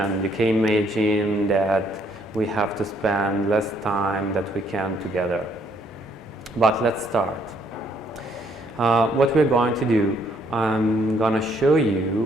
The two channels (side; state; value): both; normal; correlation 0.68